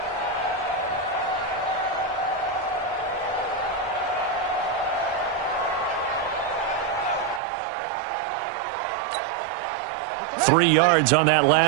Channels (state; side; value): drops out; left; at 7.4 s